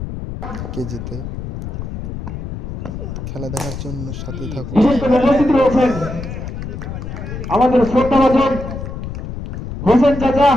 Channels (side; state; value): left; noise; rumble, 7 dB below the sound